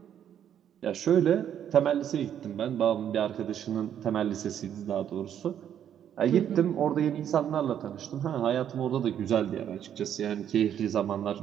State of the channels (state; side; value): quieter; left; 9.6 dB